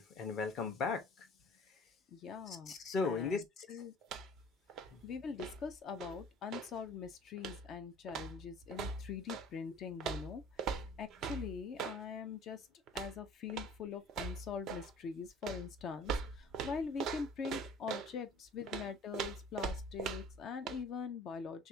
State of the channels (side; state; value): both; normal; correlation 0.48